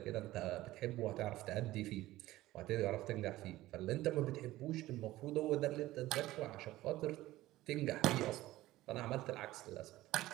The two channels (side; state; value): left; quieter; 16.5 dB